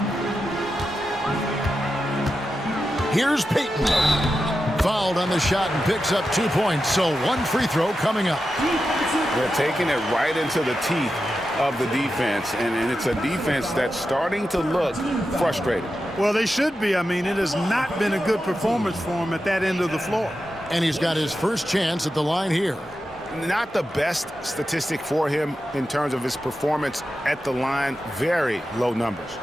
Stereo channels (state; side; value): normal; both; correlation 0.90